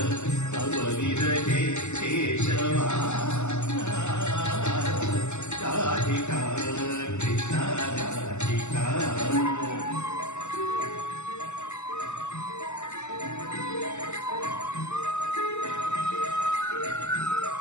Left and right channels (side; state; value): right; late; 0.83 ms